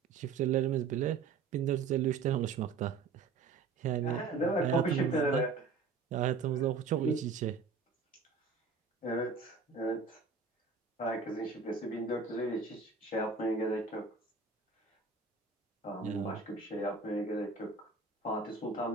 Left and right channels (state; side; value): quieter; left; 4.7 dB